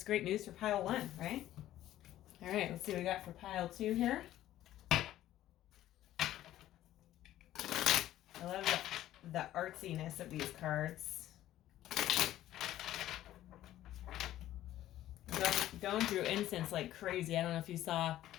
great news for pile one, right? All right, let's see what we got for pile two here. I love the artsiness of these cards. Going through incense like crazy. I don't know if you saw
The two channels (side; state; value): right; quieter; 13.5 dB